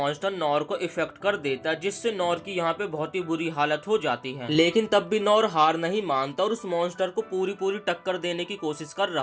नॉर को इफेक्ट कर देता है, जिससे नॉर की यहाँ पे बहुत ही बुरी हालत हो जाती है। लेकिन तब भी नॉर हार नहीं मानता और उस मॉन्स्टर को पूरी टक्कर देने की कोशिश कर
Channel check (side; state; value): both; identical; correlation 1.00